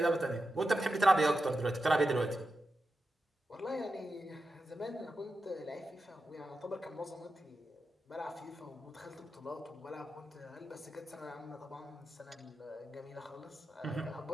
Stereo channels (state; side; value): normal; both; correlation 0.89